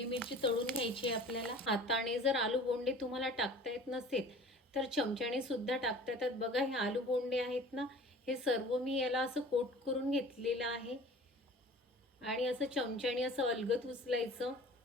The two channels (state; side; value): normal; both; correlation 0.44